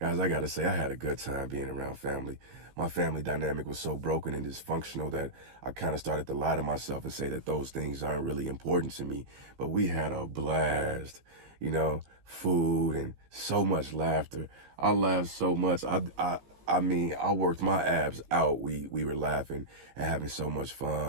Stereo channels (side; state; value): left; late; 15 ms